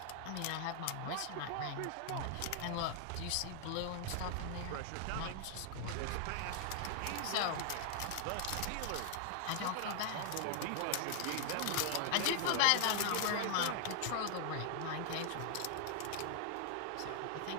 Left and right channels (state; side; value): different; both; correlation 0.00